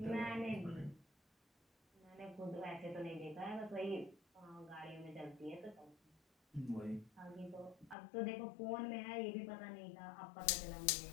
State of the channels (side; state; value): right; drops out; at 8.0 s